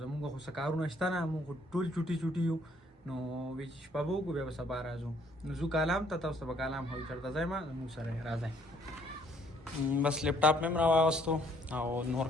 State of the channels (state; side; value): normal; both; correlation 0.64